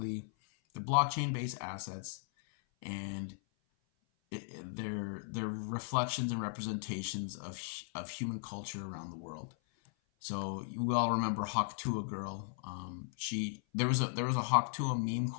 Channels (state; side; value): silent; right; 53 dB below the other